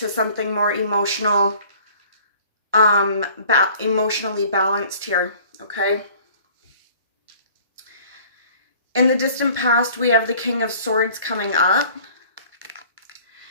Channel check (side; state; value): both; inverted; correlation -0.51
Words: something more emotional, emotionally balanced here, okay? In the distant past, we have the King of Swords coming up.